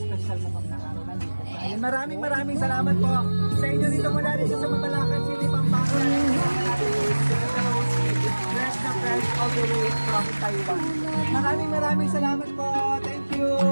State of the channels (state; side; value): inverted; both; correlation -1.00